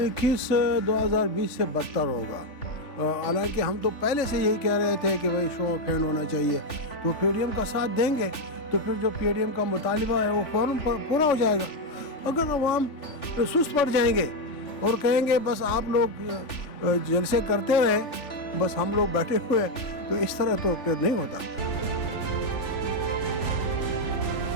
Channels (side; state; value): right; late; 3.4 ms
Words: 2020 سے بدتر ہوگا. حالانکہ ہم تو پہلے سے یہی کہہ رہے تھے کہ بھائی شو آف ہینڈ ہونا چاہیے. تو پی ڈی ایم کا ساتھ دیں گے تو پھر جو پی ڈی ایم کا مطالبہ ہے وہ فوراً پورا ہو جائے گا. اگر عوام سست پڑ جائیں گے اور کہیں گے بس آپ لوگ جلسے کرتے رہے بس ہم لوگ بیٹھے ہوئے تو اس طرح تو پھر نہیں ہوتا.